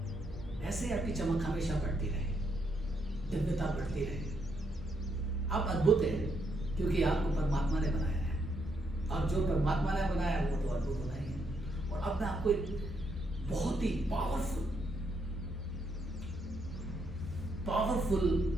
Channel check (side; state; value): both; normal; correlation 0.76